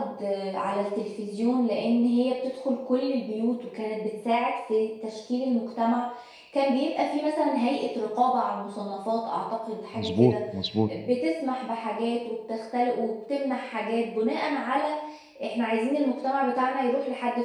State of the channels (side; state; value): both; identical; correlation 1.00